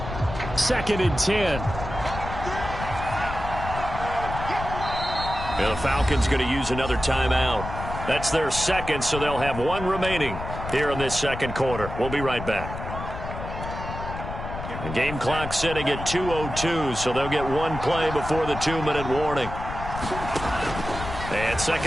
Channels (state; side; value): noise; left; rumble, 8 dB below the sound